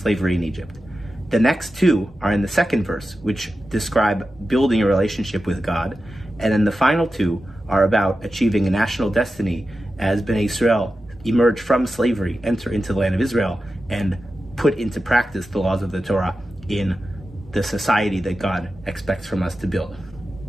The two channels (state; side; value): normal; both; correlation 0.92